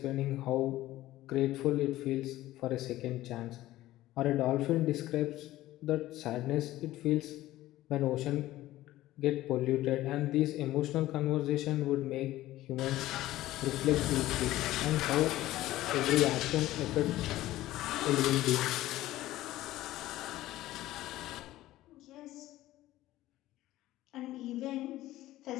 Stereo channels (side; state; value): right; quieter; 15.7 dB